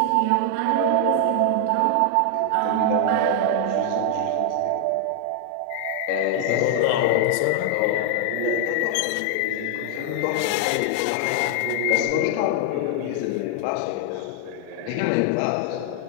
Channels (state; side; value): different; both; correlation 0.00